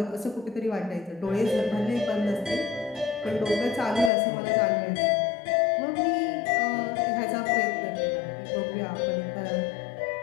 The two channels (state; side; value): drops out; right; at 4.1 s